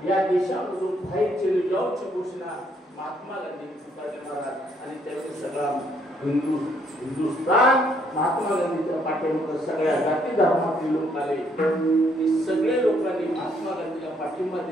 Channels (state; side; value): normal; both; correlation 0.69